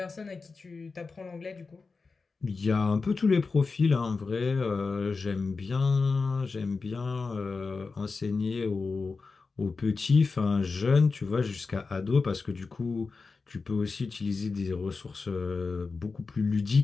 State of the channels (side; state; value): right; quieter; 4.3 dB